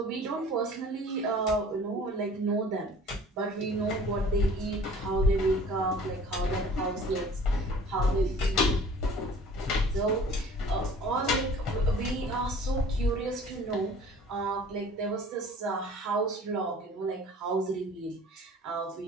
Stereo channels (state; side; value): normal; both; correlation 0.47